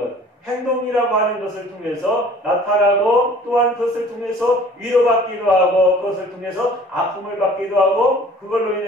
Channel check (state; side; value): normal; both; correlation 0.49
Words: 행동이라고 하는 것을 통해서 나타나고, 또한 그것을 통해서 위로받기도 하고, 그것을 통해서 아픔을 받기도 하고, 그걸로